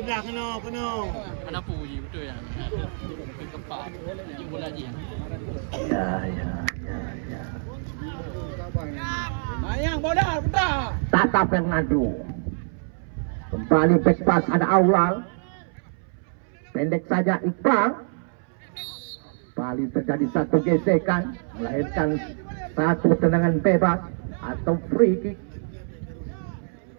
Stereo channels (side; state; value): left; silent; 61 dB below the other